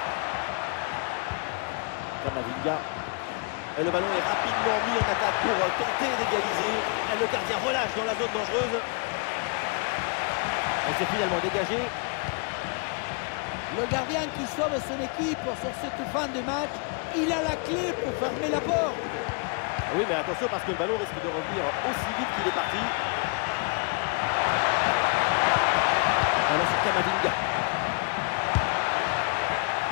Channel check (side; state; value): right; quieter; 36.3 dB